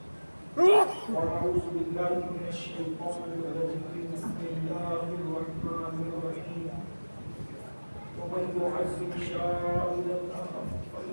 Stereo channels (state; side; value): inverted; both; correlation -1.00